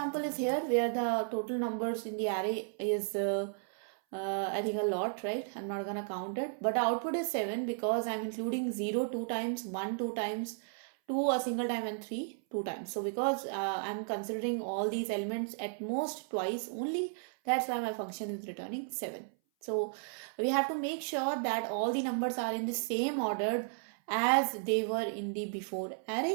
is here where the total numbers in the array is I think a lot, right? I'm not gonna count it, but the output is 7 because I'm including 0 2 times, 1 2 times, 2 a single time and 3 2 times. So because I'm considering all these elements at most twice only, that's why my function is returning 7. So we have to make sure that all the numbers are in the same order as they were in the before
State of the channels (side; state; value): left; silent; 55 dB below the other